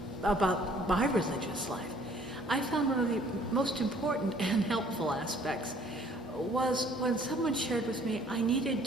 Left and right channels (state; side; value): normal; both; correlation 0.58